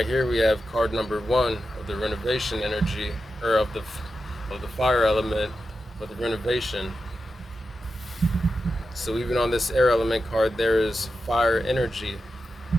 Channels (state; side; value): normal; both; correlation 0.90